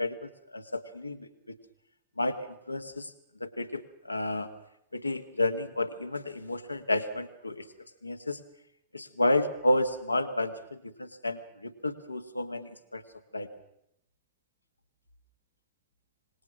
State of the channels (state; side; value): inverted; both; correlation -0.88